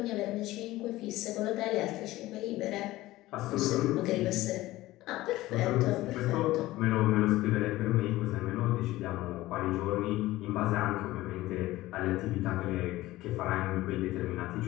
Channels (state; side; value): quieter; right; 17.2 dB